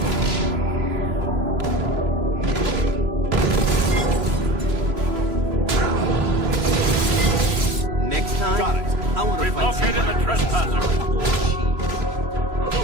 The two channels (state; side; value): late; left; 3.2 ms